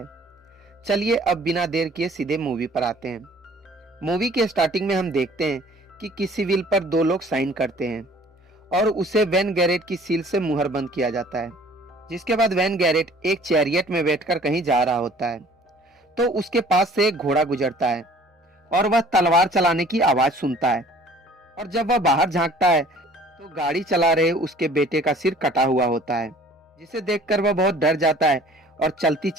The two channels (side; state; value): both; normal; correlation 0.52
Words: चलिए अब बिना देर किए सीधे मूवी पर आते हैं। मूवी के स्टार्टिंग में हम देखते हैं कि किसी विल पर दो लोग साइन करते हैं और उसे वैन गैरेट की सील से मुहर बंद किया जाता है। जिसके बाद वैन गैरेट एक चैरियट में बैठकर कहीं जा रहा होता है, तो उसके पास से एक घोड़ा गुजरता है और वह तलवार चलाने की आवाज सुनता है। और जब वह बाहर झांकता है तो गाड़ी चला रहे उसके बेटे का सिर कटा हुआ होता है, जिसे देखकर वह बहुत डर जाता है और चलती